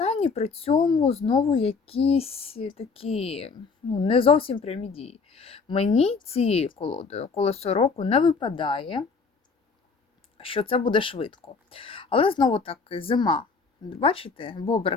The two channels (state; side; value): quieter; right; 4.8 dB